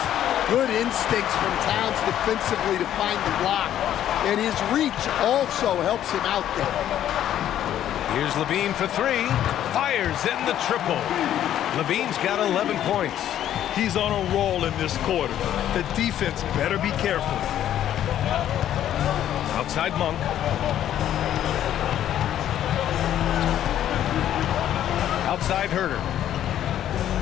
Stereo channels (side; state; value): right; quieter; 11.3 dB